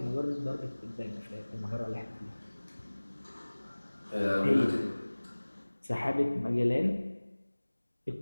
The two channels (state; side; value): inverted; both; correlation -1.00